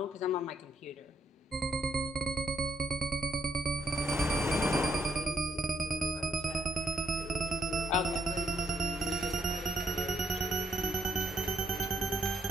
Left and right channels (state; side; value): normal; both; correlation 0.74